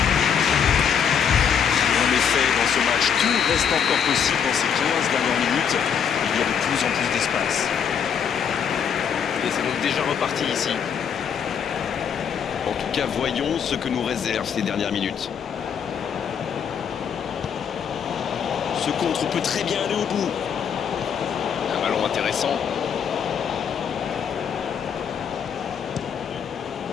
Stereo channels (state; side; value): quieter; right; 7.6 dB